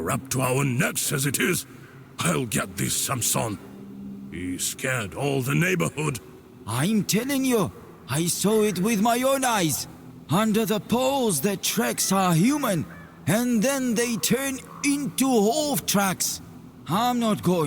up to our necks as it is. I'll get this Samson. He scared all the neighborhood. I'm telling you, I saw it with my own eyes. Under the poles, the tracks are human, and then they turn into hoof tracks. I'm not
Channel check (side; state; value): both; identical; correlation 1.00